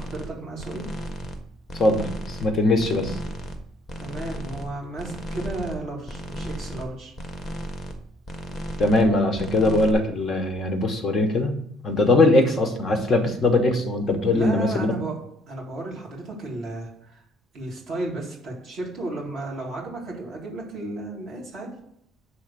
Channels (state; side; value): normal; both; correlation 0.64